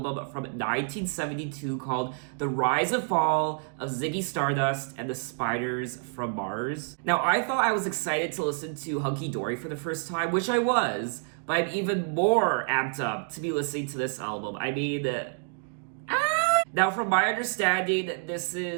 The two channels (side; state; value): left; silent; 59 dB below the other